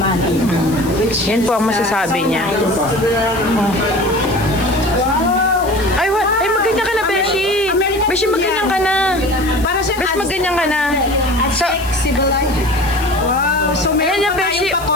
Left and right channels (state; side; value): noise; left; hiss, 16 dB below the sound